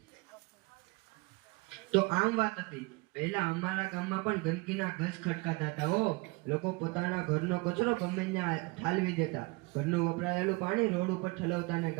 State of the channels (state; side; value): quieter; left; 25.9 dB